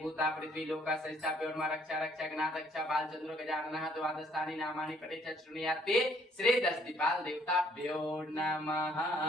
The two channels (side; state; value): both; normal; correlation 0.64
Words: पृथ्वी लोका संस्थाप्य और रक्षा रक्षा गणात रक्षा बाल चंद्र गजानन द्वादशानि नामानि पठे चृणुयाते श्री दशदीपाल देवताभ्यो नमः।